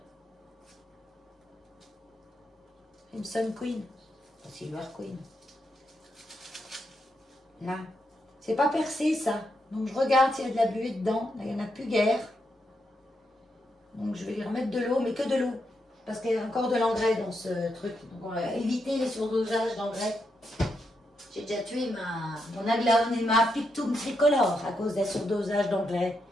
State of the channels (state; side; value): normal; both; correlation 0.82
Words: Crimson Queen. Silver Queen. Là. C'est pas percé, ça. Donc, je regarde s'il y a de la buée dedans. Là, il n'y en a plus guère. Donc, je vais lui remettre de l'eau, mais que de l'eau. Parce qu'il y a encore de l'engrais dans ce truc. Donc, on va éviter les surdosages d'engrais. J'ai déjà tué mon Aglaonema Pictum tricolore à cause d'un surdosage d'engrais.